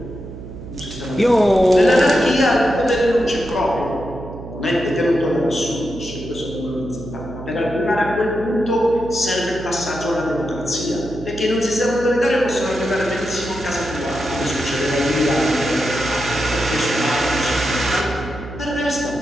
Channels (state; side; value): noise; right; hum, 12 dB below the sound